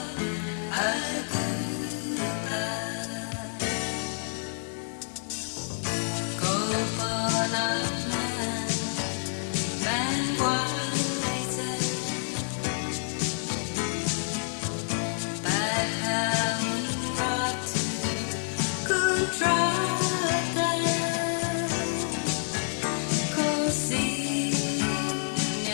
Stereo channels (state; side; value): silent; right; 59 dB below the other